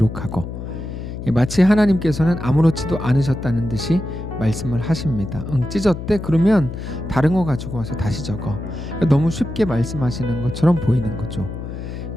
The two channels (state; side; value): noise; left; hum, 8 dB below the sound